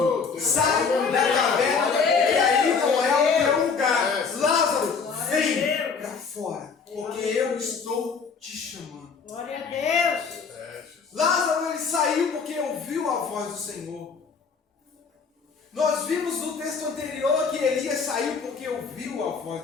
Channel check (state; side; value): quieter; right; 5.4 dB